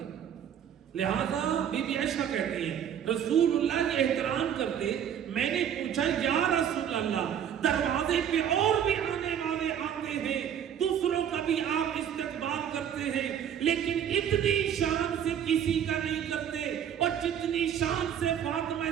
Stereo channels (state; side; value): quieter; left; 9.1 dB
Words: لہذا بی بی عائشہ کہتے ہیں رسول اللہ کے احترام کرتے. میں نے پوچھا یا رسول اللہ دروازے پہ اور بھی آنے والے آتے ہیں، دوسروں کا بھی آپ استقبال کرتے ہیں، لیکن اتنی شان سے کسی کا نہیں کرتے اور جتنی شان سے فاطمہ